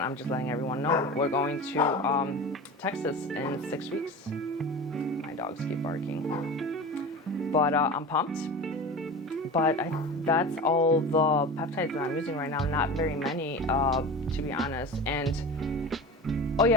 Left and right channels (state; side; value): normal; both; correlation 0.31